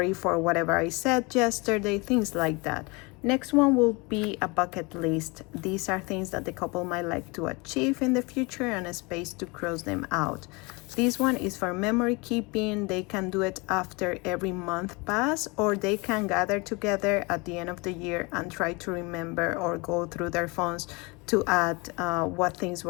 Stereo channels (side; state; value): right; quieter; 27.3 dB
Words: for whatever I said yesterday, things like that. Next one will be a bucket list. These are things that the couple might like to achieve in the future and a space to cross them out. This one is for memory keeping. They can do it after every month pass, or they can gather together at the end of the year and try to remember or go through their phones to add what things